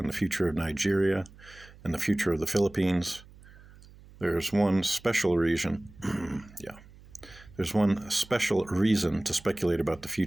the future of Nigeria and the future of the Philippines. There's one special reason, There's one special reason to speculate about the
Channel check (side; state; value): right; noise; hum, 22 dB below the sound